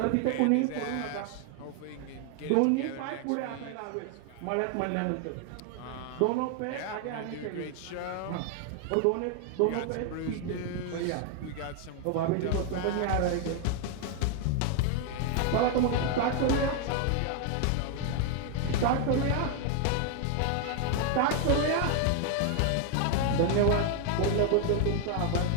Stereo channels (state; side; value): different; both; correlation 0.00